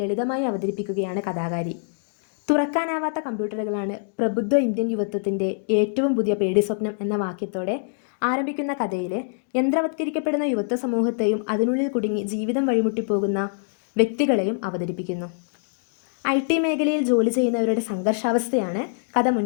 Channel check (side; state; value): right; silent; digital silence